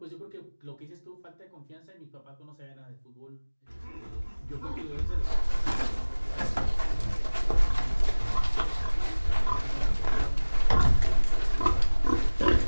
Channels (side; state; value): both; inverted; correlation -1.00